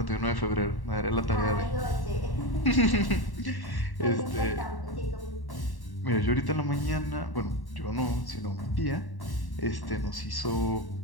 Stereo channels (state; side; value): late; right; 1.1 ms